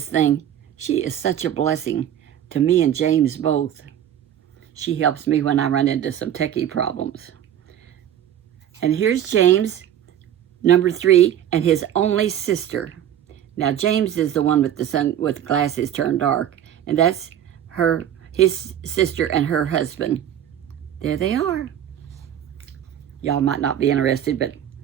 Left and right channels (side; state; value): left; quieter; 10.4 dB